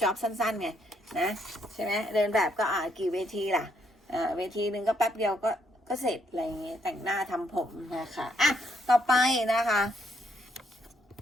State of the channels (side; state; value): both; normal; correlation 0.73